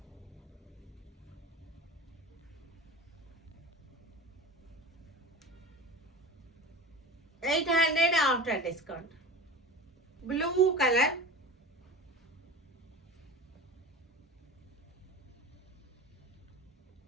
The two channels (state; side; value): normal; both; correlation 0.33